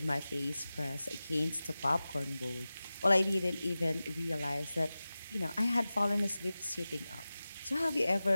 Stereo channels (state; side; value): inverted; both; correlation -0.96